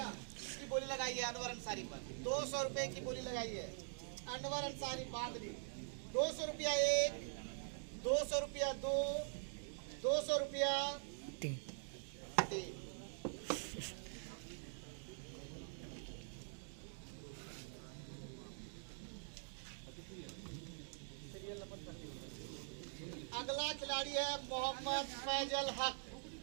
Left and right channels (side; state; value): left; silent; digital silence